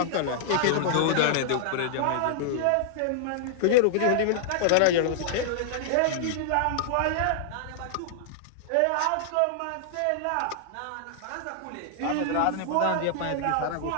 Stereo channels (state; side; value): different; both; correlation -0.01